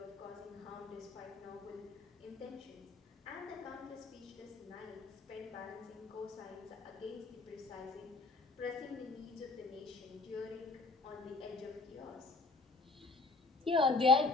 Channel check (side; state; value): right; quieter; 3.7 dB